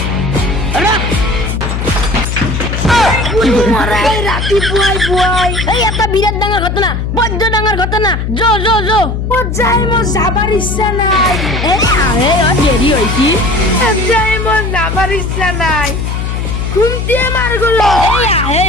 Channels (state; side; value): noise; left; hum, 3 dB below the sound